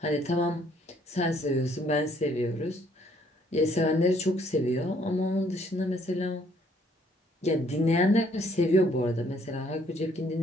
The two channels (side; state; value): both; normal; correlation 0.65